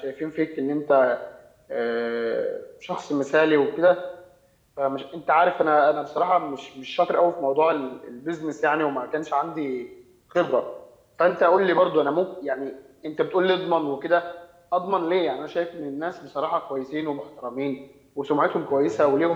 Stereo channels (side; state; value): both; identical; correlation 1.00